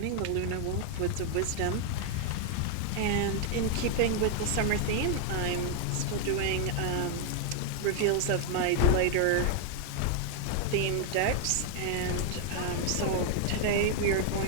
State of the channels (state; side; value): different; both; correlation 0.00